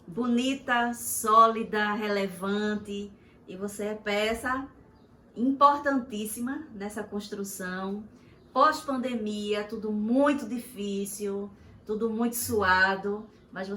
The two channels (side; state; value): both; identical; correlation 1.00